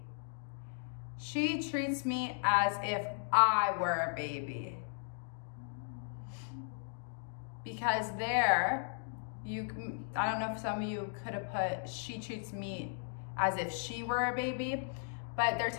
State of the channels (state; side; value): silent; right; digital silence